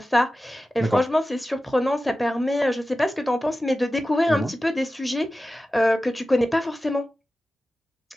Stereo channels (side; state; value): both; normal; correlation 0.94